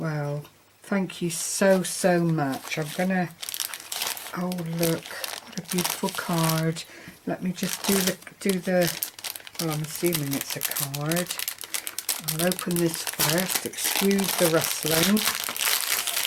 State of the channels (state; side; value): identical; both; correlation 1.00